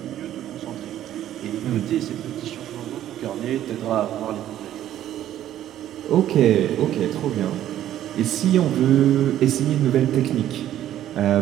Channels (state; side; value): quieter; left; 12.1 dB